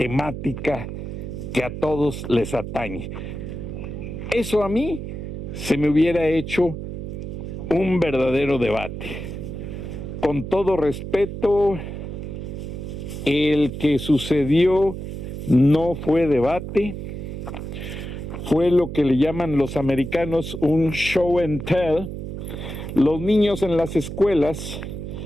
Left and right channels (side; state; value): right; noise; hum, 7 dB below the sound